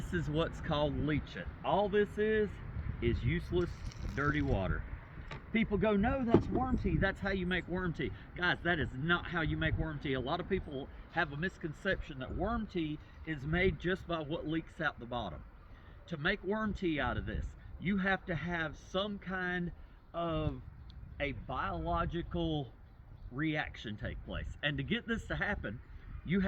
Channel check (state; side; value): identical; both; correlation 1.00